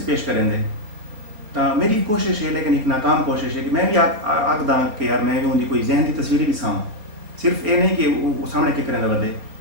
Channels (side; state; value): left; late; 4.4 ms